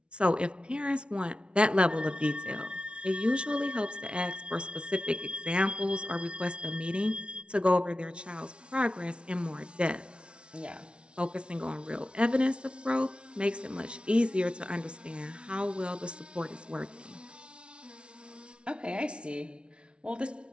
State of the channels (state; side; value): late; left; 0.058 ms